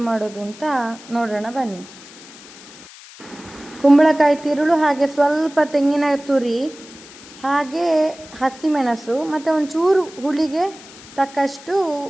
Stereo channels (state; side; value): noise; left; hiss, 19 dB below the sound